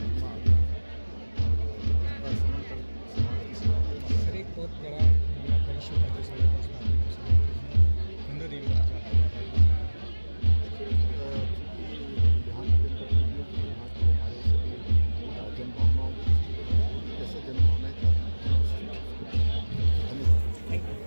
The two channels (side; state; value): both; inverted; correlation -1.00